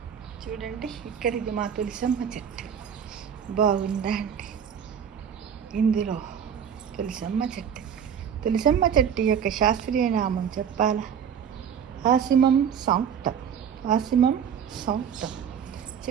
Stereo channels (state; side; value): quieter; left; 8.1 dB